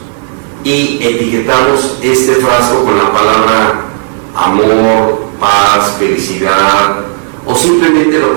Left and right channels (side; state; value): left; silent; 67 dB below the other